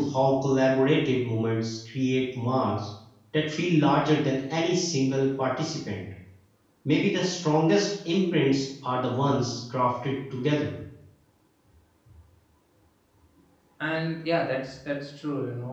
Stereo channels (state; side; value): identical; both; correlation 1.00